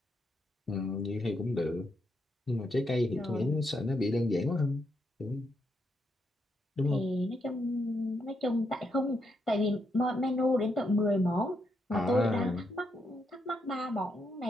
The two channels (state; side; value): normal; both; correlation 0.80